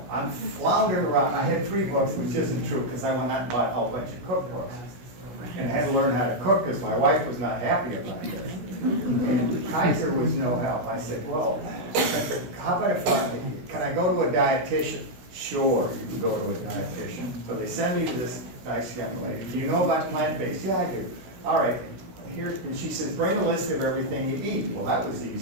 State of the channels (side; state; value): left; late; 16 ms